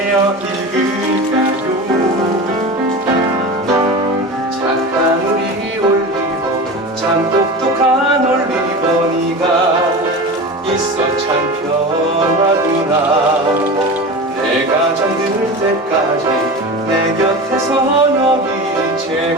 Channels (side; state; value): both; normal; correlation 0.29